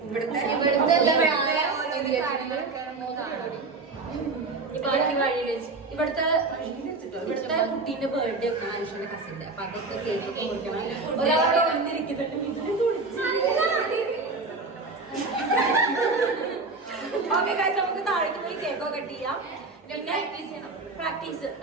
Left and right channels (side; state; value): left; quieter; 3.8 dB